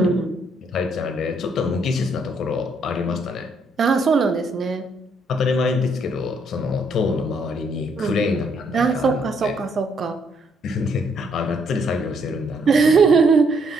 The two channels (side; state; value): both; normal; correlation 0.71